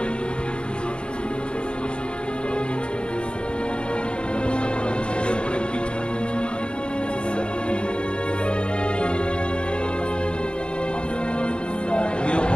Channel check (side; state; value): right; late; 0.054 ms